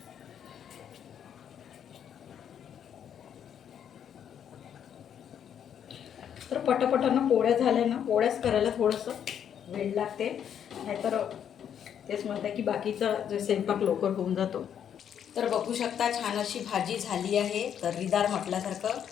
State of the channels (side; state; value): right; quieter; 8.9 dB